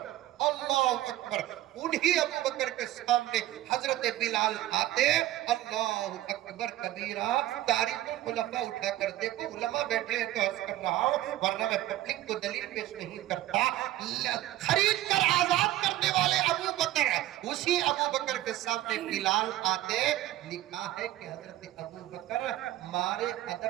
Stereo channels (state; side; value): quieter; left; 14.9 dB